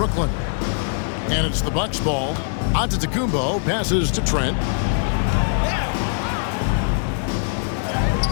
And it's the Bucks ball. Antetokounmpo passes to Trent.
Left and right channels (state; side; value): silent; right; 64 dB below the other